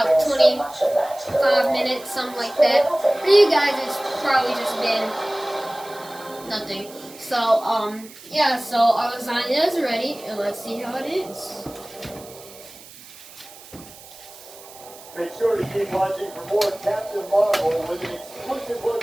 25 minutes, something like that. For you guys, it's probably just been nothing. So, yeah, so our lasagna is ready, and let's see how it is. Make sure to keep watching for more Captain Marvel with an exclusive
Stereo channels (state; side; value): noise; right; hiss, 19 dB below the sound